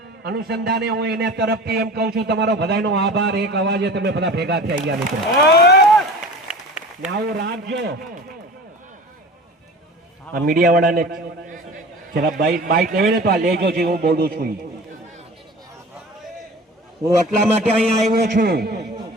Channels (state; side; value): normal; both; correlation 0.39